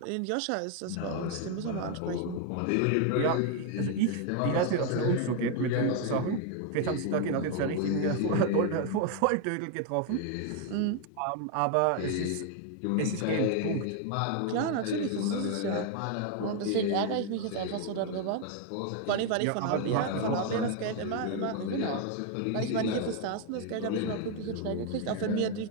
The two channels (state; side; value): different; both; correlation 0.01